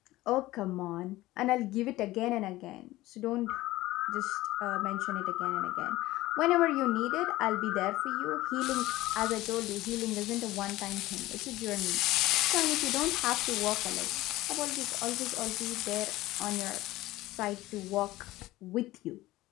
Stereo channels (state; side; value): quieter; right; 17.5 dB